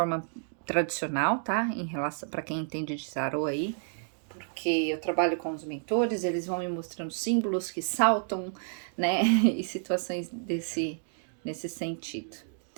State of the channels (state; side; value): silent; left; digital silence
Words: tradicional, tá? Em relação para quem entende de tarô aí, porque eu trabalho com os mentores, eles vão me mostrando símbolos que saltam, né? E situações nesse sentido.